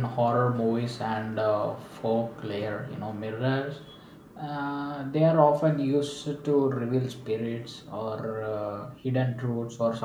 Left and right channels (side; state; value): both; identical; correlation 1.00